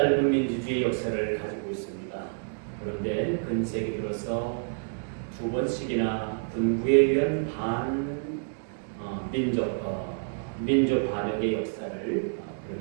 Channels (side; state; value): left; silent; digital silence